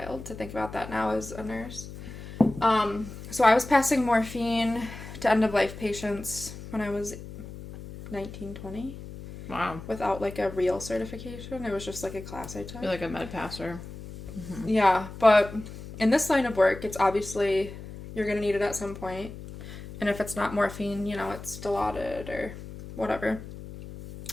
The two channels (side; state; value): left; noise; hum, 12 dB below the sound